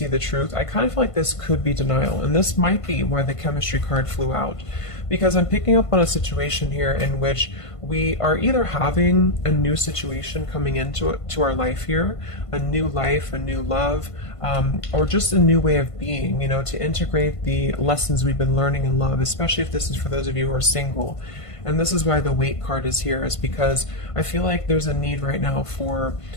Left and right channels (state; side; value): late; right; 1.5 ms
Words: the truth, I kind of feel like this could be denial. And this might be why the chemistry card flew out. Because I'm picking up on a situation here in which we are either having a new situation coming into our life here, a new life, a new love, or just a new way of being, you know, to integrate the lessons we've been learning in love, especially if this is for those of you who are single. And this is why the weight card is here, is because I feel like there's a need right now for